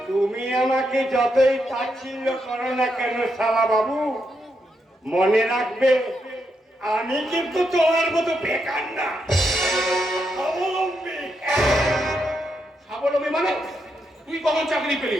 তুমি আমাকে যতই তাচ্ছিল্য করো না কেন শালা বাবু, মনে রাখবে আমি কিন্তু তোমার মতো বেকার না, স্বাবলম্বী। স্বাবলম্বী মানে? তুই কখন চাকরি পেলি?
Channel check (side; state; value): both; normal; correlation 0.81